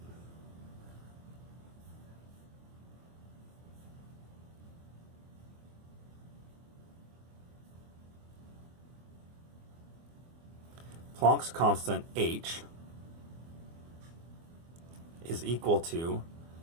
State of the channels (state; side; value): late; left; 24 ms